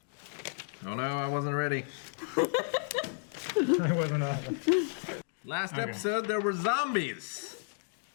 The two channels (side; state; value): right; silent; digital silence